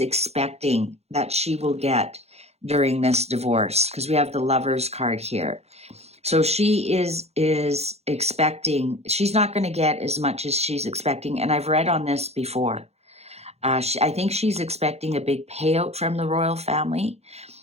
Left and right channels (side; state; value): left; late; 0.31 ms